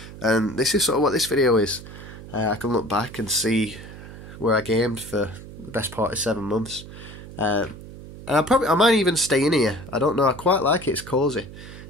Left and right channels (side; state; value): right; noise; hum, 15 dB below the sound